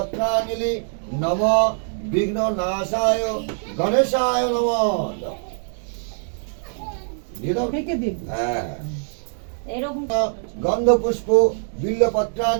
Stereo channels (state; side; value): silent; left; digital silence